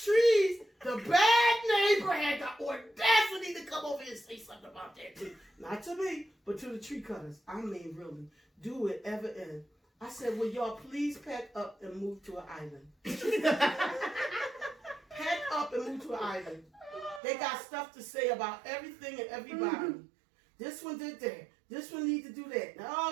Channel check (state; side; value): drops out; left; at 17.2 s